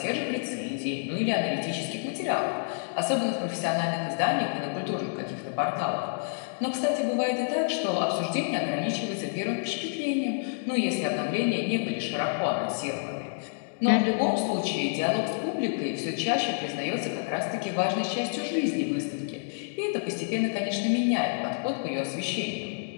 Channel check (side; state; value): right; silent; digital silence